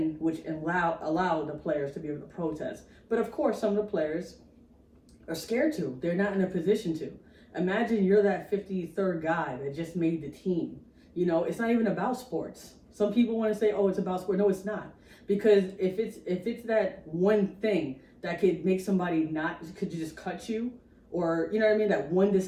which allowed the players to be able to protest. But of course, some of the players are scared to. They're not in a position to. Imagine you're that 53rd guy that just made the team. It's not even about sports. Some people want to say, oh, it's about sport. No, it's not. Because if it's that one thing that could make somebody could just cut you, or, that one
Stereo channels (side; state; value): both; identical; correlation 1.00